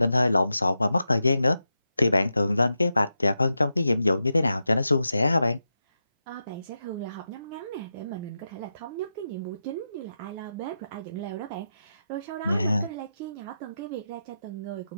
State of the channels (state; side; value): inverted; both; correlation -0.88